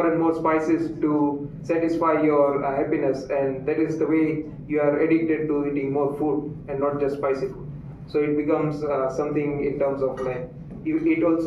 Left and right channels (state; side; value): identical; both; correlation 1.00